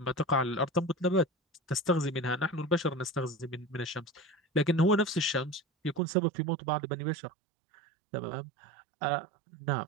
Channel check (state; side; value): drops out; left; at 6.0 s